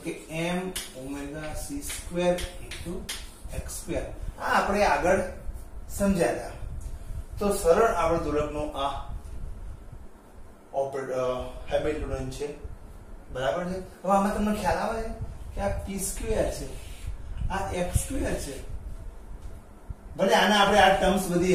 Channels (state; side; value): identical; both; correlation 1.00